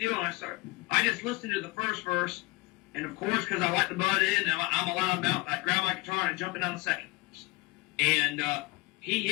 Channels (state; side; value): quieter; right; 24.1 dB